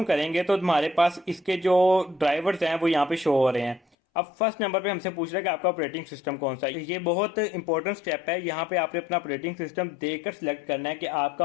करेंगे तो हमारे पास इसके जो ड्राइवर्स हैं वो यहाँ पे शो हो रहे हैं। अब फर्स्ट नंबर पे हमसे पूछ रहा है कि आपका ऑपरेटिंग सिस्टम कौन सा है। ये बहुत इंपॉर्टेंट स्टेप है। यहाँ पे आपने अपना ऑपरेटिंग सिस्टम देखकर सिलेक्ट करना है कि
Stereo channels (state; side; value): drops out; right; at 3.8 s